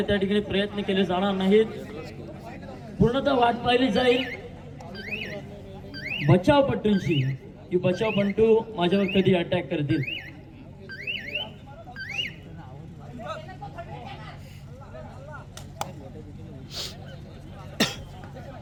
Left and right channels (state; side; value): identical; both; correlation 1.00